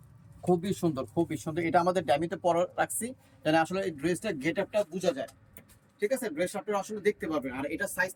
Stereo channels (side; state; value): both; identical; correlation 1.00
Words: খুবই সুন্দর, খুবই সুন্দর। এটা আমাদের ড্যামিতে পরে রাখছি, যেন আসলে এই ড্রেসটা গেট আপটা বোঝা যায়। ঠিক আছে, ড্রেস আপনারা আসলে দেখতে পারবেন। আর এটা সাইজ